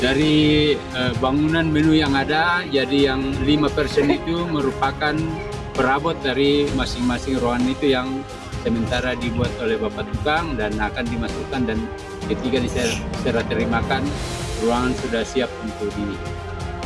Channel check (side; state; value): both; identical; correlation 1.00